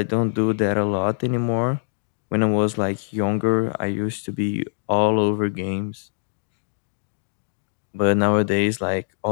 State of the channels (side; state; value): right; silent; digital silence